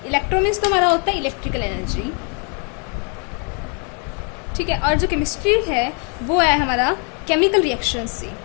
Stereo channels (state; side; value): quieter; right; 37.8 dB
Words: इलेक्ट्रो मीन्स तो हमारा होता है इलेक्ट्रिकल एनर्जी, ठीक है। और जो केमिस्ट्री है वो है हमारा केमिकल रिएक्शन